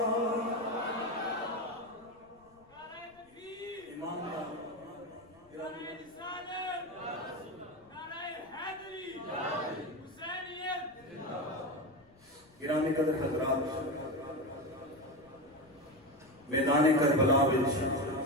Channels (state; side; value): noise; left; rumble, 29 dB below the sound